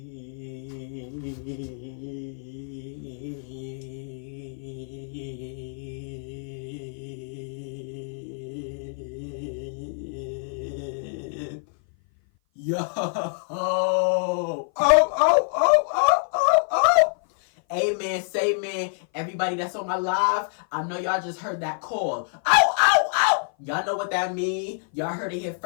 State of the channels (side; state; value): right; silent; 57 dB below the other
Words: Yo! Oh! Amen, say man. Everybody that's on my live, I know y'all just heard that call. Oh! Y'all know what that mean. Y'all heard it here